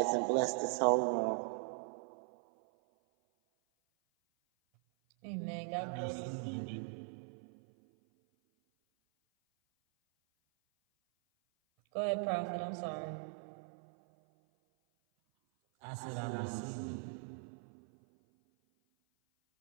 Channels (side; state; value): left; silent; 51 dB below the other